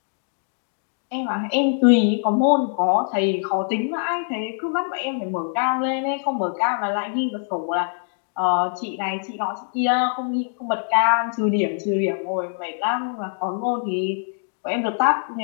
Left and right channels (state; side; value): silent; right; digital silence